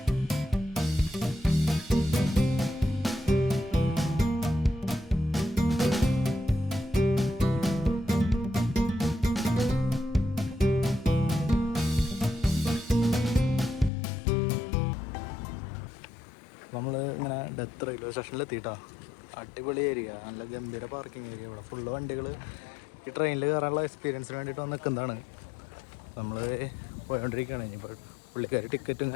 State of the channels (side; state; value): right; drops out; at 13.9 s